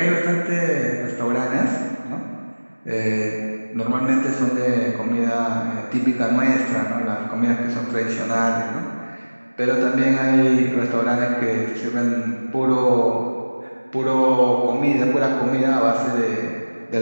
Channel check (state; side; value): inverted; both; correlation -1.00